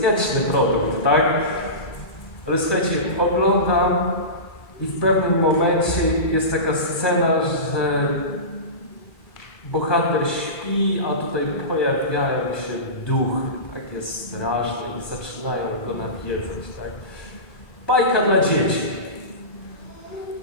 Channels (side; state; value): right; late; 1.7 ms